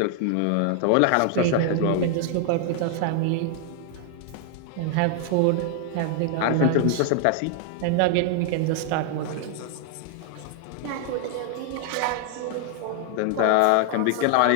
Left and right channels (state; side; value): different; both; correlation 0.00